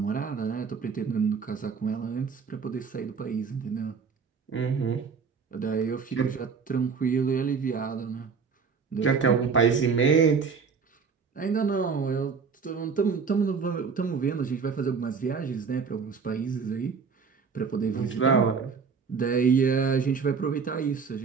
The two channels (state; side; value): quieter; left; 5.6 dB